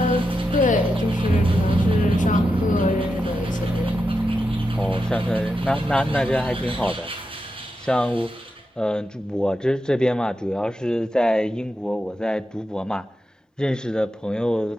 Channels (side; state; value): both; normal; correlation 0.88